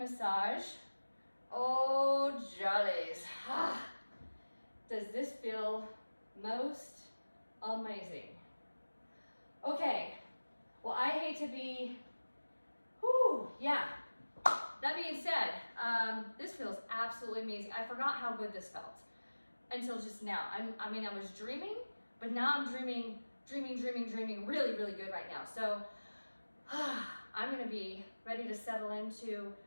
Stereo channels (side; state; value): both; inverted; correlation -1.00